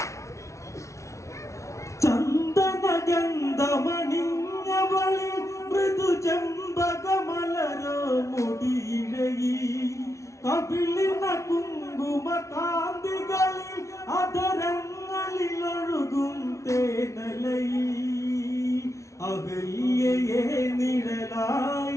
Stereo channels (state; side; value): late; right; 0.14 ms